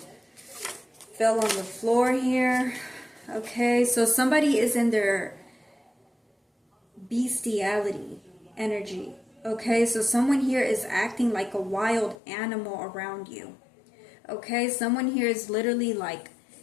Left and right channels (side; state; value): right; drops out; at 12.2 s